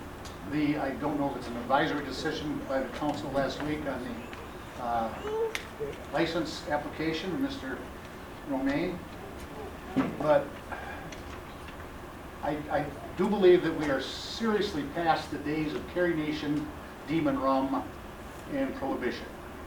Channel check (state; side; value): identical; both; correlation 1.00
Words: I don't know if it's an advisory decision by the council last week on the license application of Mr. Romaine, but I do believe that we are seriously past the days of Carrie Nation, Demon Rum, and Prohibition.